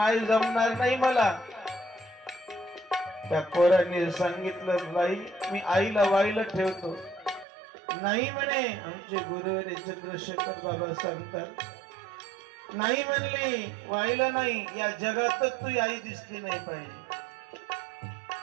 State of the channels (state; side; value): drops out; left; at 7.5 s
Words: जमणार नाही मला. त्या पोराने सांगितलं, बाई मी आईला वाईला ठेवतो. नाही म्हणे, आमचे गुरुवारी चंद्रशेखर बाबा सांगतात, नाही म्हणले, वाईला नाही, या जगातच तू आई दिसली नाही पाहिजे.